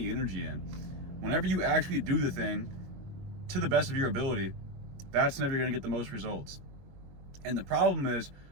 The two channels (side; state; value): left; late; 22 ms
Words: energy in. Whenever you actually do the thing to the best of your ability, that's never going to get the most results. And the problem is,